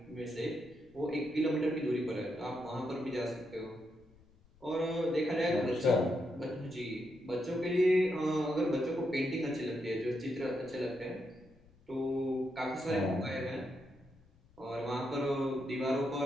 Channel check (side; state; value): left; noise; rumble, 28 dB below the sound